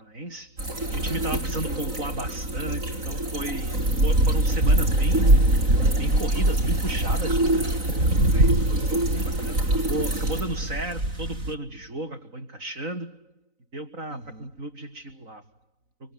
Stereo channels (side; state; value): left; late; 3.9 ms